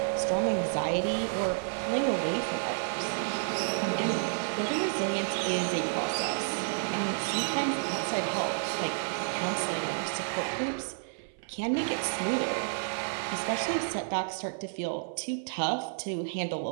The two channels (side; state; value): left; silent; 56 dB below the other